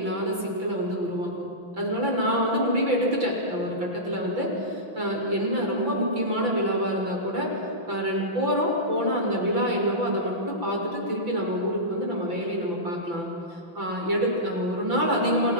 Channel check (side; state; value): left; late; 5.9 ms